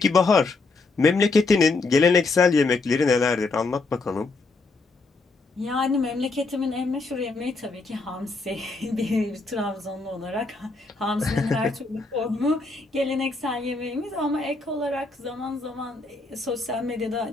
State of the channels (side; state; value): right; quieter; 3.7 dB